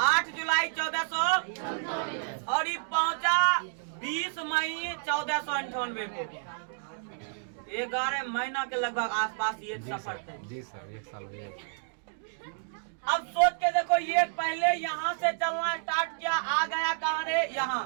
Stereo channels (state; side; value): silent; left; digital silence